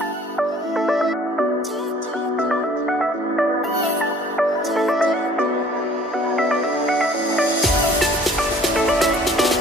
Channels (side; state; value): both; normal; correlation 0.53